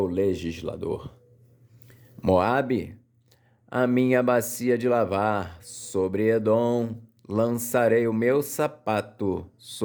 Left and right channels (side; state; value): both; identical; correlation 1.00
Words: legislador. Moabe, a minha bacia de lavar. Sobre Edom lançarei o meu sapato,